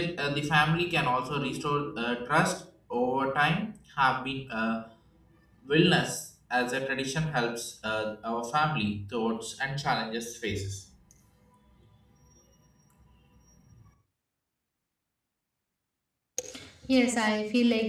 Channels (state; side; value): identical; both; correlation 1.00